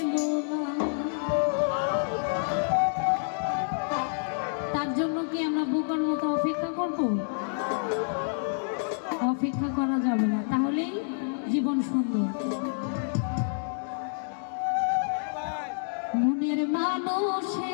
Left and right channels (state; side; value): silent; right; digital silence